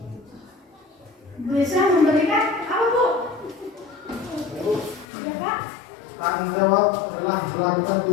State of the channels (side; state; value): right; drops out; at 5.1 s